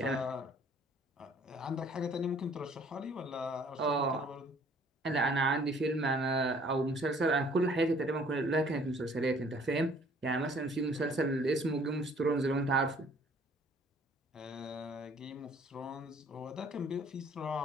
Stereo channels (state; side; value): normal; both; correlation 0.57